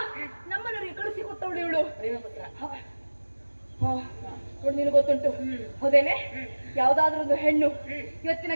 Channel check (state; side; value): inverted; both; correlation -1.00